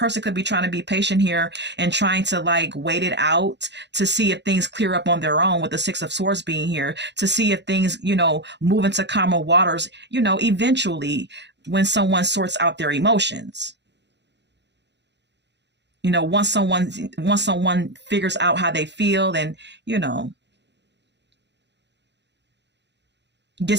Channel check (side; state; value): left; late; 0.51 ms